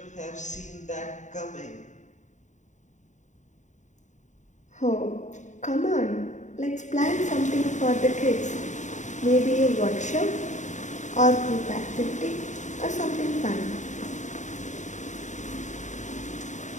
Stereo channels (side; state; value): right; late; 0.35 ms